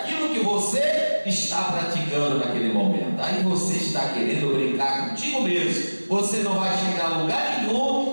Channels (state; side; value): inverted; both; correlation -1.00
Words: que você está praticando naquele momento. aí você está querendo brincar contigo mesmo. Você não vai chegar a lugar